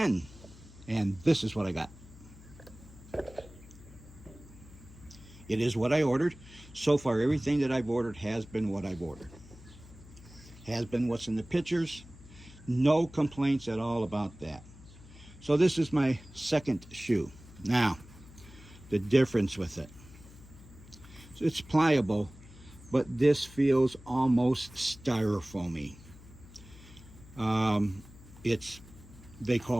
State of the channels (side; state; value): left; noise; hum, 20 dB below the sound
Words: And this is what I got. It is what I ordered. So far, everything that I've ordered has been what I've ordered. Has been what's in the pictures. No complaints at all about that. So this is my second shoe. Now, the difference with it. So it's pliable, but this feels almost styrofoamy. It's, they